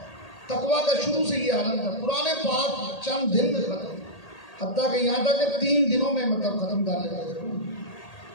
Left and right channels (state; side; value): late; right; 1.8 ms